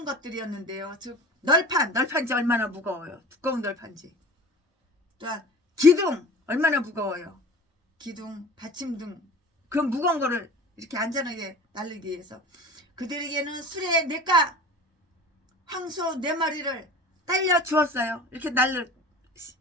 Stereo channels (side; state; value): both; normal; correlation 0.40